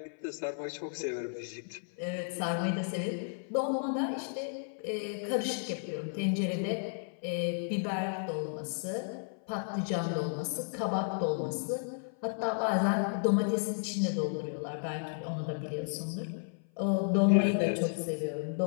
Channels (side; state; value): right; silent; 56 dB below the other